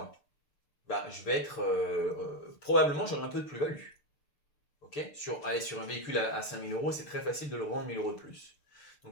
bah, je vais être probablement j'aurai un peu de plus-value. Okay, sur un véhicule à 5 000 euros, c'est très facile de le revendre 1 000 euros de plus.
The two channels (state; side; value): late; right; 6.7 ms